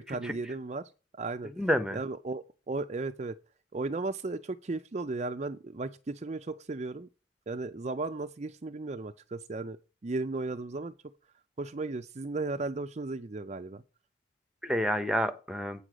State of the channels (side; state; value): both; normal; correlation 0.57